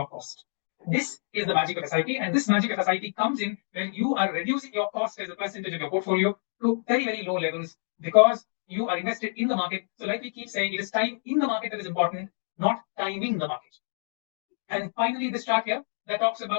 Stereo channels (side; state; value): right; silent; digital silence